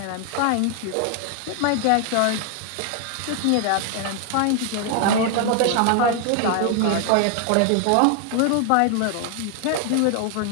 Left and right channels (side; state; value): both; different; correlation 0.00